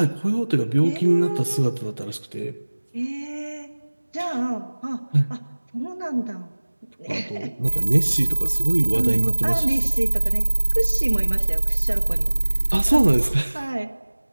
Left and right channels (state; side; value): inverted; both; correlation -1.00